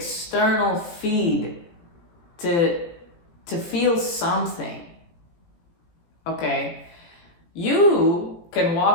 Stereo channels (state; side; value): late; right; 17 ms